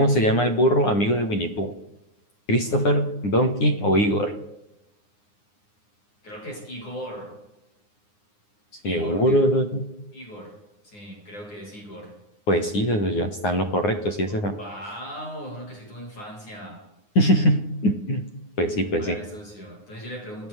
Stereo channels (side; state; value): right; late; 9.7 ms